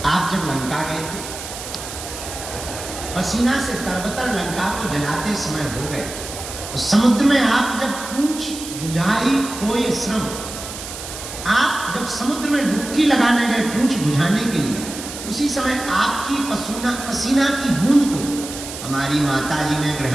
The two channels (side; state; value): right; noise; hiss, 10 dB below the sound